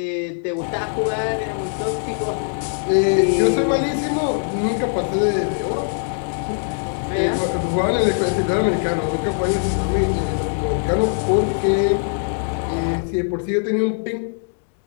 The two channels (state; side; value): silent; right; digital silence